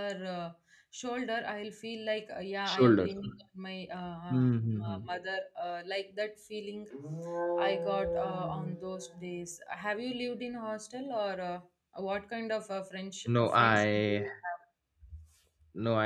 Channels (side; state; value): both; identical; correlation 1.00